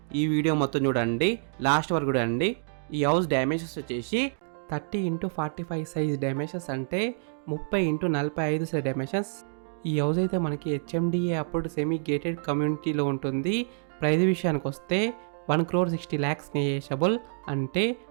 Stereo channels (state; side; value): silent; left; digital silence